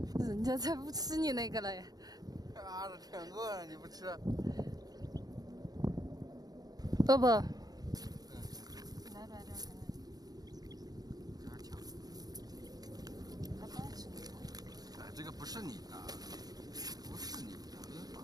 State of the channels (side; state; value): left; late; 0.19 ms